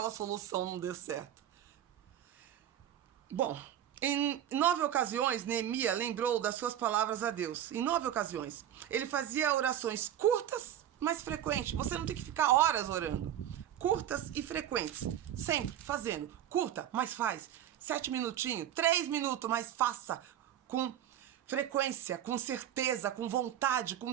solução não deu certo. Bom, em 9 ocasiões, Neemias lembrou das suas palavras a Deus. Em 9 ocasiões. Ele fazia orações curtas, mas frequentes. Você não tem que ficar horas orando. Curtas e frequentes. Sempre fazendo. Curta, mas faz. 7 minutinhos, 3 minutos, mas faça com frequência, com certeza, com vontade, com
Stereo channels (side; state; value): left; quieter; 11.0 dB